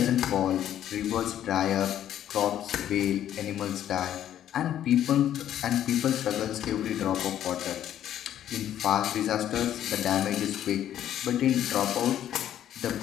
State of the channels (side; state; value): right; quieter; 11.1 dB